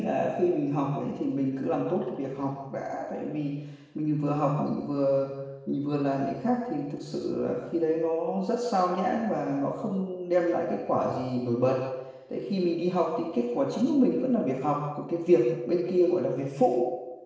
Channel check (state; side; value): identical; both; correlation 1.00